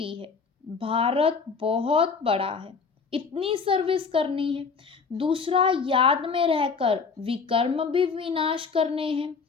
है, भारत बहुत बड़ा है, इतनी सर्विस करनी है। दूसरा याद में रहकर विकर्म भी विनाश करने हैं।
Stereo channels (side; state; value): right; quieter; 5.2 dB